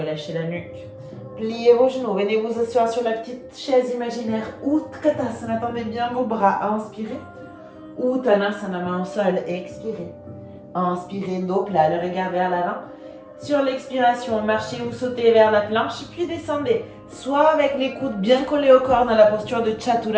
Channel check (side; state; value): both; identical; correlation 1.00